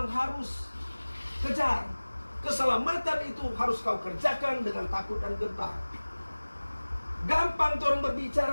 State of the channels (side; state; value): both; inverted; correlation -1.00